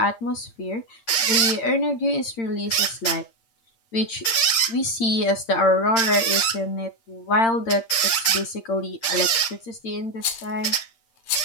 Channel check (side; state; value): right; late; 8.8 ms